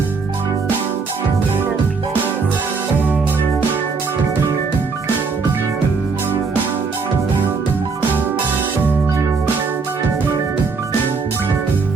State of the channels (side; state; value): left; quieter; 4.8 dB